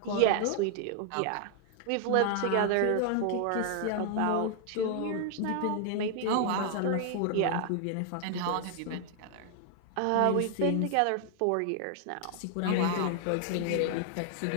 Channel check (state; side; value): different; both; correlation 0.00